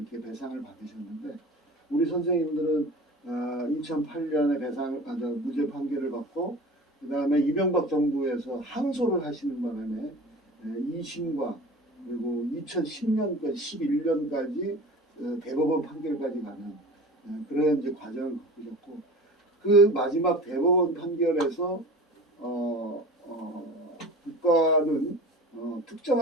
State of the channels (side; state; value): both; normal; correlation 0.38